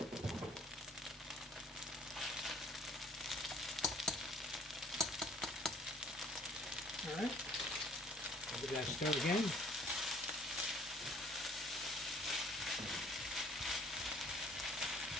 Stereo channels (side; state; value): both; normal; correlation 0.57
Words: All right, I'll give that a stir again.